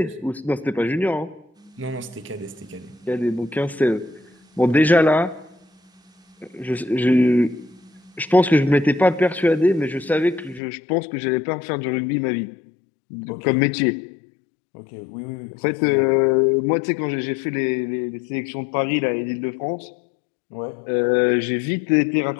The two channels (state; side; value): drops out; right; at 10.6 s